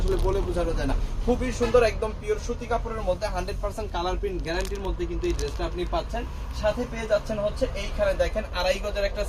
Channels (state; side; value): identical; both; correlation 1.00